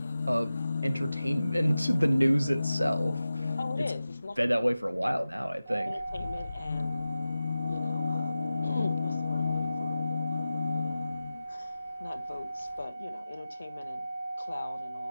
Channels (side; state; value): both; inverted; correlation -0.94